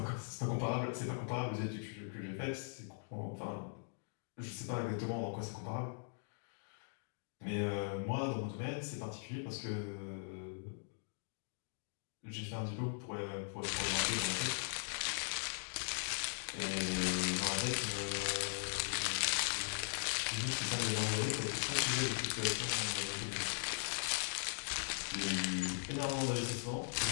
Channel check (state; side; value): silent; right; digital silence